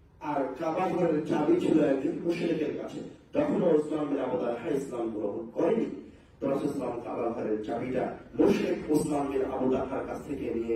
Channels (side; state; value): both; identical; correlation 1.00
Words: আর কাবা ঘরের চাবি ছিল একজন মুশরিকের কাছে। তখন ওসমান বিন আবু তালহা ইসলাম গ্রহণ করেনি। তো রাসূল সাল্লাল্লাহু আলাইহি ওয়াসাল্লাম কাবা ঘরের চাবিটা মুশরিক ওসমান বিন আবু তালহার কাছ থেকে নিয়ে